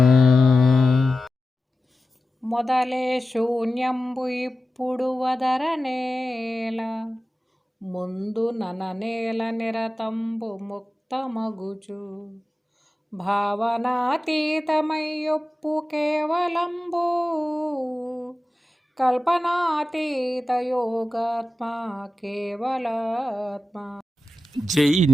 మొదలే శూన్యంబు ఇప్పుడు వదరనేల ముందు నననేల నిరతంబు ముక్తమగుచు భావనాతీతమయ్యొప్పు కేవలంబు కల్పనాతీత యోగాత్మ కేవలాత్మ. జై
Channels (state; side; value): normal; both; correlation 0.94